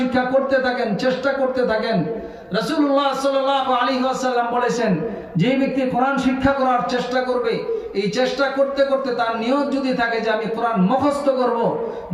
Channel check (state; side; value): identical; both; correlation 1.00